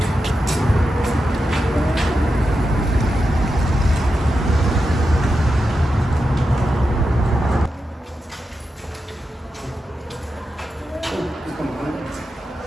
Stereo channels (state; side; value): normal; both; correlation 0.89